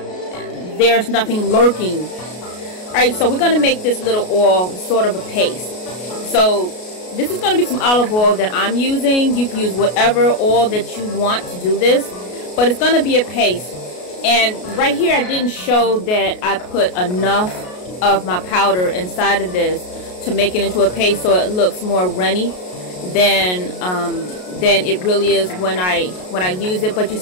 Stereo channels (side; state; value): right; late; 33 ms